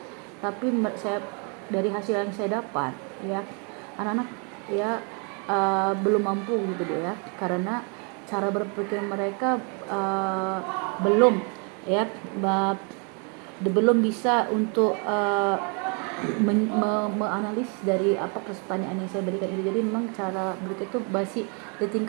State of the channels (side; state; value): left; quieter; 36.5 dB